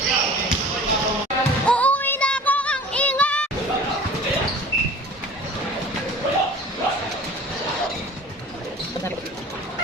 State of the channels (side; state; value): both; normal; correlation 0.43